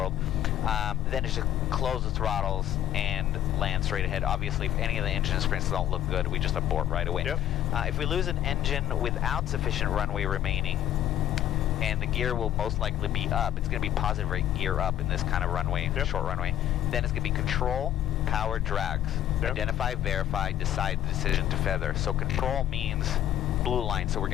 then it's just close the throttles and land straight ahead. Obviously, if any of the engine sprints don't look good, we just abort right away. Yep. If we lose an engine without sufficient runway remaining, and the gear will most likely be up, it's going to be positive rate gear up in this kind of runway, Yep. short runway, then it's going to be control, power, drags. Yep. Identify, verify, decide the decision to feather. So control means blue line, so we're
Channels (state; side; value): quieter; right; 11.8 dB